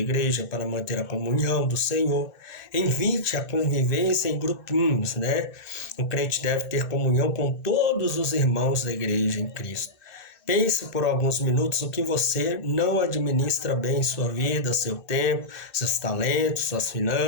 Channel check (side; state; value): right; late; 2.6 ms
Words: para manter a comunhão do Senhor. Invite a convivência em grupinhos, né? O crente deve ter comunhão com todos os irmãos da igreja em Cristo. Pense por alguns minutos o que você não administra bem em sua vida, seu tempo, seus talentos, suas